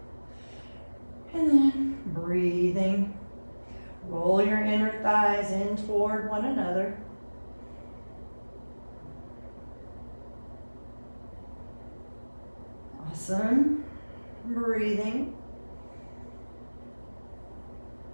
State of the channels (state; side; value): inverted; both; correlation -1.00